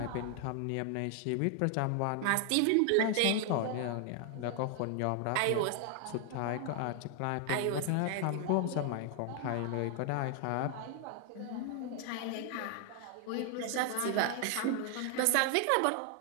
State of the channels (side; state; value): both; different; correlation 0.00